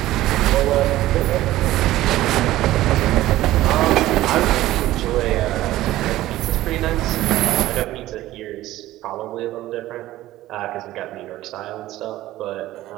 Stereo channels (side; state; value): left; quieter; 15.5 dB